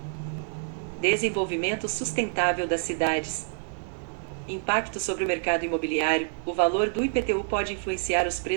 desenvolvimento sustentável das cidades. Impacto sobre o mercado imobiliário, o valor do IPTU pode influenciar os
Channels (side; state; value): left; silent; 60 dB below the other